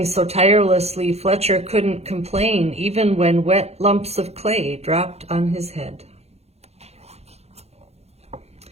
so tirelessly, Fletcher couldn't complain even when wet lumps of clay dropped on his head.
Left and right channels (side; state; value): left; late; 0.31 ms